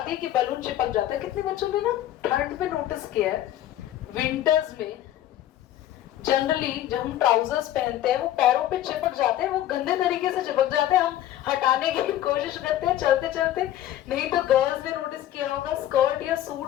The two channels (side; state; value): right; quieter; 12.7 dB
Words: है कि बलून चिपक जाता है. कितने बच्चों ने ना ठंड में नोटिस किया है, विंटर्स में जनरली जब हम ट्राउजर्स पहनते हैं वो पैरों पे चिपक जाते हैं, वो गंदे तरीके से चिपक जाते हैं. हम हटाने की कोशिश करते हैं चलते चलते. नहीं तो गर्ल्स ने नोटिस किया होगा, स्कर्ट या